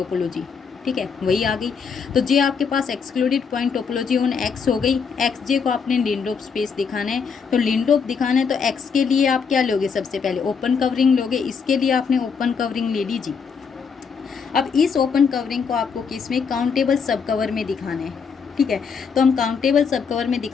ठीक है, वही आ गई। तो जे आपके पास excluded point topology on X हो गई, एक्स जे को आपने लिंडलोप स्पेस दिखाना है, तो लिंडलोप दिखाना है तो एक्स के लिए आप क्या लोगे, सबसे पहले ओपन कवरिंग लोगे, इसके लिए आपने ओपन कवरिंग ले लीजिए। अब इस ओपन कवरिंग को आपको किस में, काउंटेबल सब कवर में दिखाना है, ठीक है। तो हम काउंटेबल सब कवर में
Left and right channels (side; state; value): right; quieter; 5.9 dB